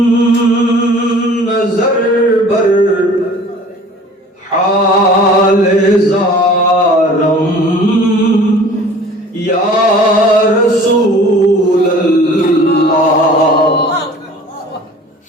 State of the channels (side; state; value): both; normal; correlation 0.46